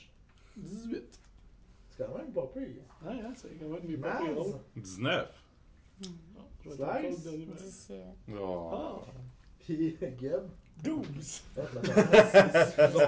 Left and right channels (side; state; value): both; identical; correlation 1.00